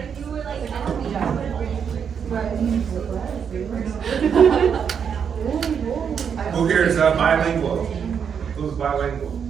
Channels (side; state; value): left; quieter; 7.3 dB